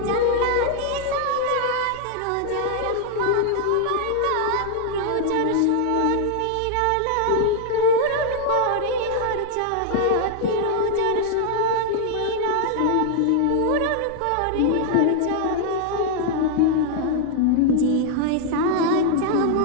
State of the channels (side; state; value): both; different; correlation 0.00